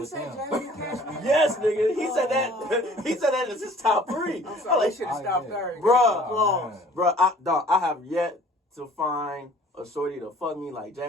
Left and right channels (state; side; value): normal; both; correlation 0.52